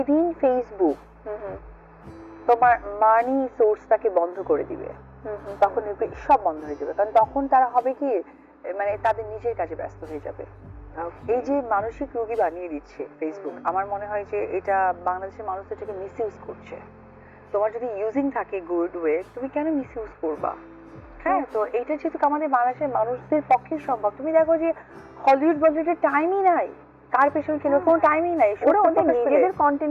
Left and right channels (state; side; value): identical; both; correlation 1.00